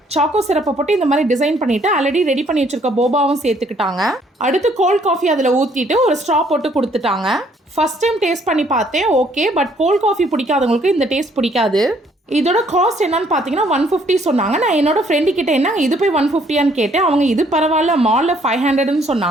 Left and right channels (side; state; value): both; normal; correlation 0.64